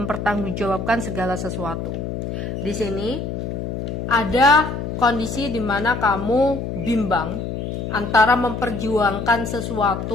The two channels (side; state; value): left; noise; hum, 4 dB below the sound